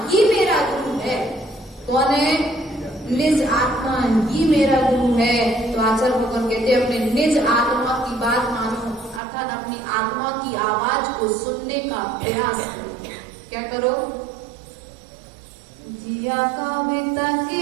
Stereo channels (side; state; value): left; drops out; at 9.2 s